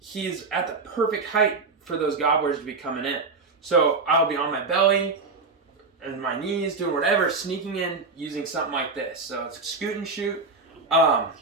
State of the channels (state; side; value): quieter; left; 4.1 dB